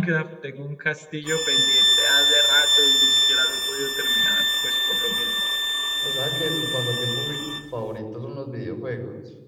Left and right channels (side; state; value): both; identical; correlation 1.00